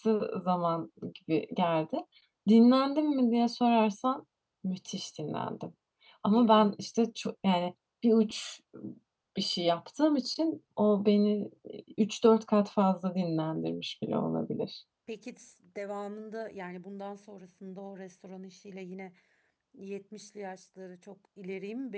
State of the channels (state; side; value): identical; both; correlation 1.00